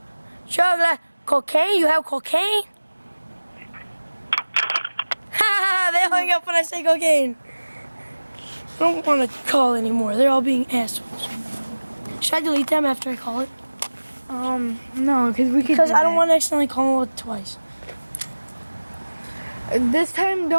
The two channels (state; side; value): inverted; both; correlation -1.00